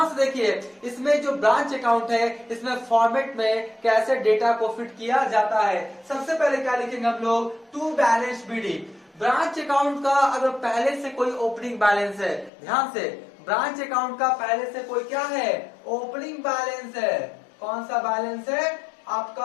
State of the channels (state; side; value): drops out; right; at 12.5 s